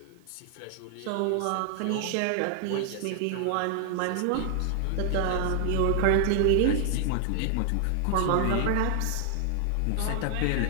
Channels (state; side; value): different; both; correlation 0.00